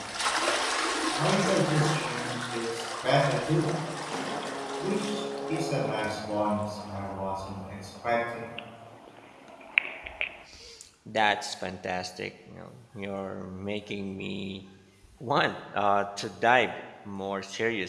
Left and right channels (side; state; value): both; identical; correlation 1.00